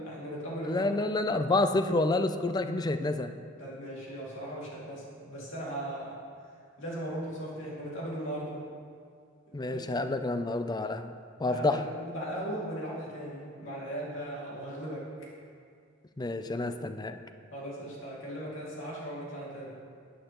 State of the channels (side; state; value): both; normal; correlation 0.51